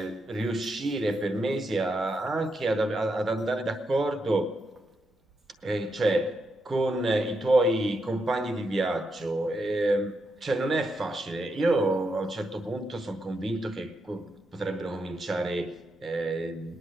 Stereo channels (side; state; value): both; normal; correlation 0.83